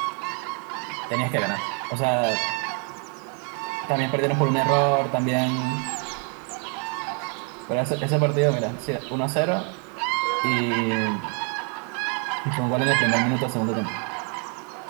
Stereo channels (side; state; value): left; quieter; 39.6 dB